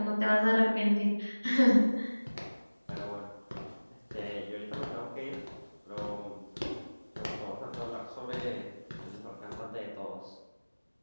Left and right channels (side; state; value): both; inverted; correlation -1.00